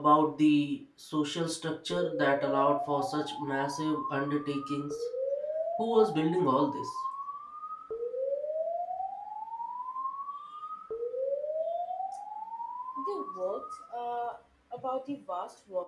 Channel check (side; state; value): both; identical; correlation 1.00